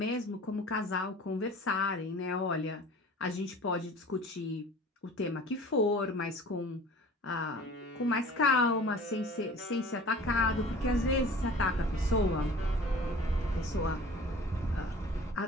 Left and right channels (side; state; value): both; normal; correlation 0.44